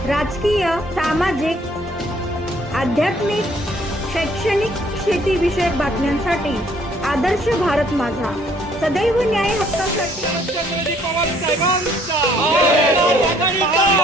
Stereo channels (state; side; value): normal; both; correlation 0.62